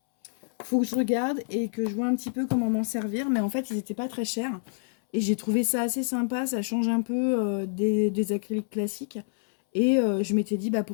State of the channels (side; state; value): right; silent; 60 dB below the other